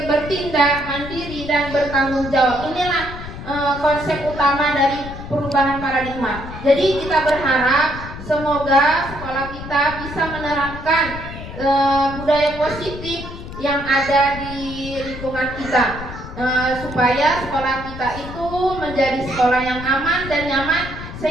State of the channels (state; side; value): noise; left; rumble, 11 dB below the sound